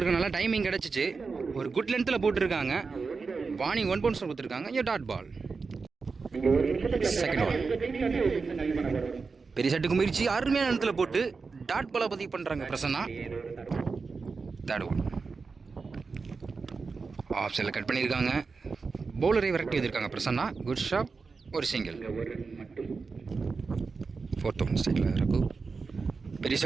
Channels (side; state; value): left; quieter; 4.6 dB